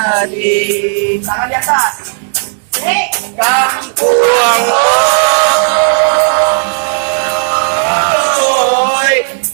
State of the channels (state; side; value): silent; left; digital silence